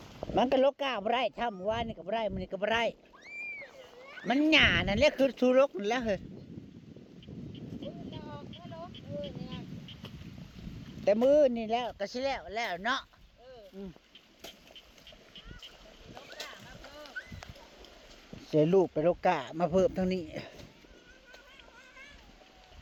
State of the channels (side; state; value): both; identical; correlation 1.00